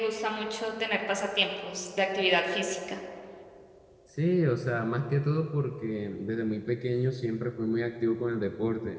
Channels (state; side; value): identical; both; correlation 1.00